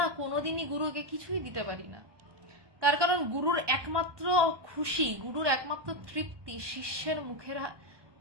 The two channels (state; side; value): late; left; 1.2 ms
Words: কোনোদিনই গুরুকে কিছুই দিতে পারি না। তার কারণ গুরুর একমাত্র খুশি, গুরুর একমাত্র তৃপ্তি শিষ্যের মুখের